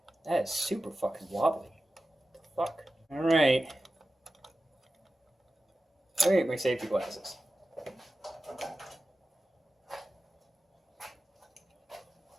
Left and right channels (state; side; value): normal; both; correlation 0.94